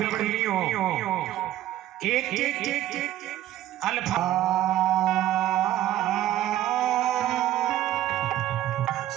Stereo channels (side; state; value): left; quieter; 13.4 dB